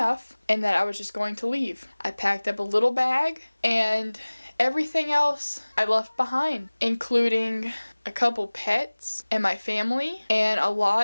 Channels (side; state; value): both; inverted; correlation -1.00